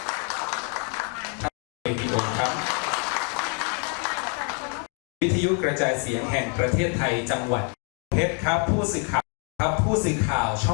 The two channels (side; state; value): right; quieter; 39.4 dB